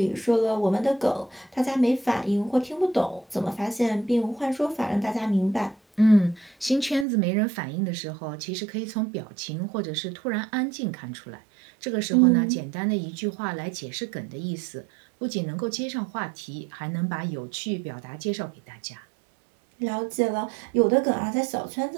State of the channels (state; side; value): drops out; left; at 7.1 s